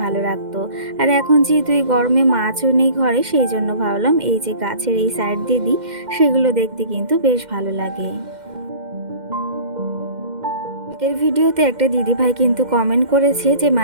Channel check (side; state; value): left; late; 2.1 ms